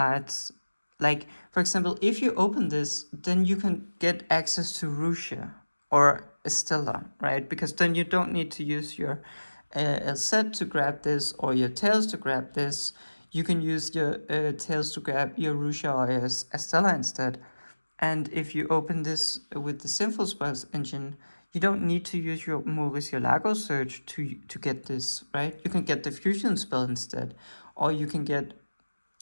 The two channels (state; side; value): inverted; both; correlation -1.00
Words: Like, for example, if you open this, then you can get access to Russia or Estella, right? Because then you don't need to use your set to grab this or your tails to grab this. You can use your tails to grab your Russia or your Estella instead. And if you open this with the Sinful Spoils engine, you don't need to use your Mauricio Lago search to get this, right? You can get the fusion spell instead, or you can get